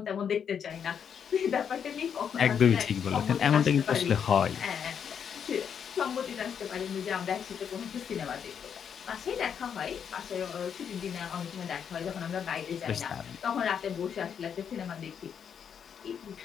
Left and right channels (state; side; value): quieter; right; 7.7 dB